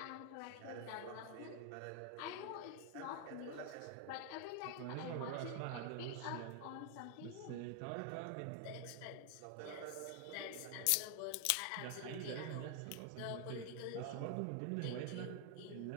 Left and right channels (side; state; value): both; different; correlation 0.00